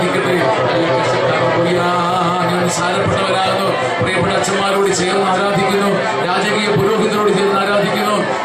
ഞാൻ സാരപ്പെട്ടവരാകുന്നു. പ്രിയപ്പെട്ട അച്ഛന്മാരോട് ചേർന്ന് ആരാധിക്കുന്നു. രാജകീയ പുരോഹിതരോട് ചേർന്ന് ആരാധിക്കുന്നു.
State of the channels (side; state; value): both; identical; correlation 1.00